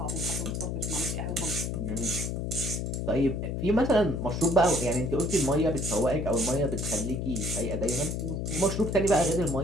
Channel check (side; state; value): left; noise; hum, 2 dB below the sound